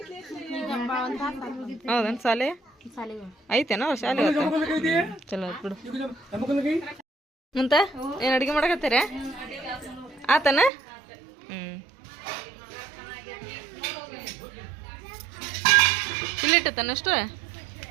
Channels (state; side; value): drops out; left; at 10.7 s